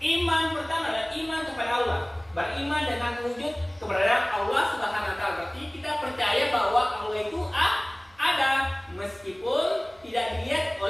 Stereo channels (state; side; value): noise; right; hum, 30 dB below the sound